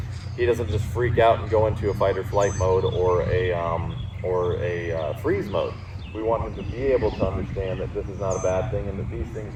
he doesn't just freak out and go into a fight or flight mode or a freeze mode. We want him to be able to understand that this is not a bad thing, and that these things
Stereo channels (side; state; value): both; identical; correlation 1.00